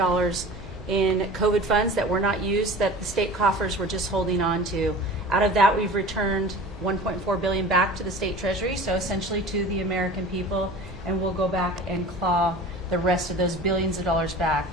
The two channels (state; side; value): normal; both; correlation 0.39